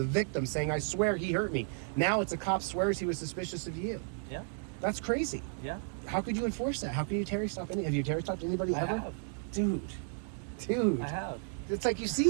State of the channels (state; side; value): silent; left; 56 dB below the other